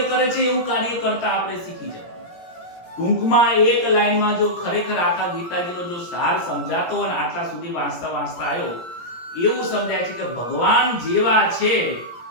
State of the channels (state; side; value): late; right; 17 ms